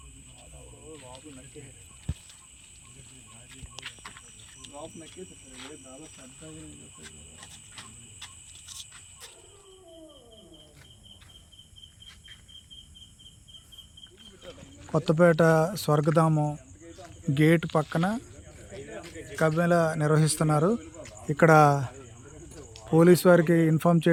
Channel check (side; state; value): both; identical; correlation 1.00